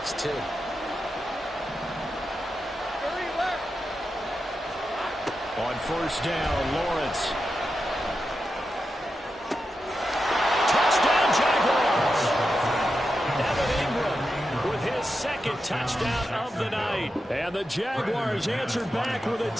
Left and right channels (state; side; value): normal; both; correlation 0.89